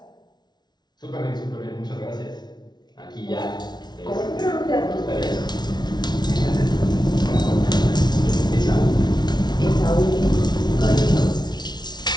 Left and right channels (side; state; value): right; late; 0.20 ms